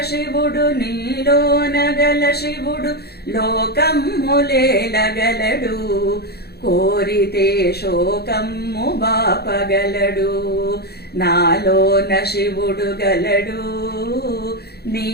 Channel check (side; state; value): right; late; 0.47 ms